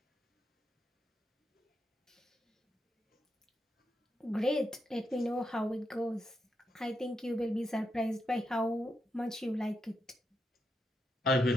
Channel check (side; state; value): both; normal; correlation 0.84